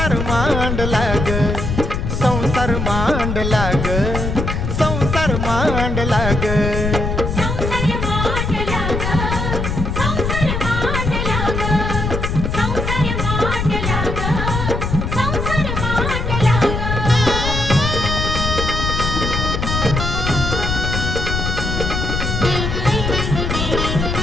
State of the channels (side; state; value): left; noise; rumble, 2 dB below the sound